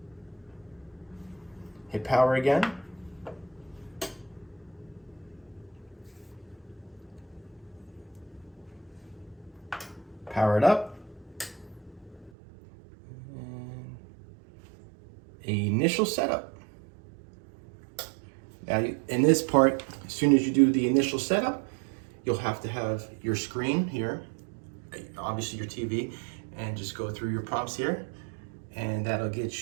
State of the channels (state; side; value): drops out; left; at 12.3 s